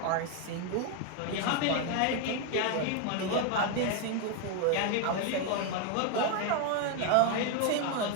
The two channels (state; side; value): different; both; correlation 0.01